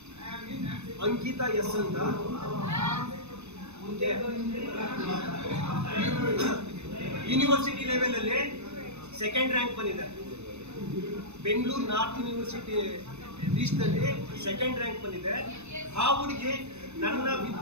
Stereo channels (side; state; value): left; late; 0.81 ms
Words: अंकिता एस ಅಂತ ಯೂನಿವರ್ಸಿಟಿ ಲೆವೆಲ್ ಅಲ್ಲಿ ಸೆಕೆಂಡ್ ರ್ಯಾಂಕ್ ಬಂದಿದೆ. ಬೆಂಗಳೂರು ನಾರ್ತ್ ಯೂನಿವರ್ಸಿಟಿ ಲೀಸ್ಟ್ ಅಲ್ಲಿ ಸೆಕೆಂಡ್ ರ್ಯಾಂಕ್ ಬಂದಿದೆ. ಆ ಹುಡುಗಿ ನನ್ನ